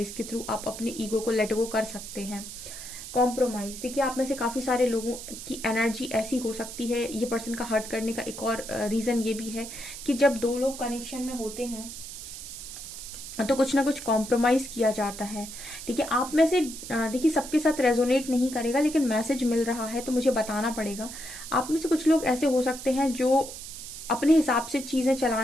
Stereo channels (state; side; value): noise; right; hiss, 11 dB below the sound